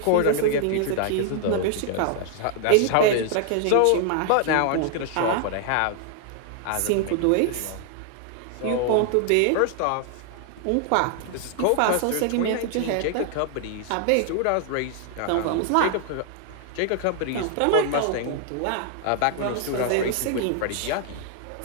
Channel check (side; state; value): both; different; correlation 0.00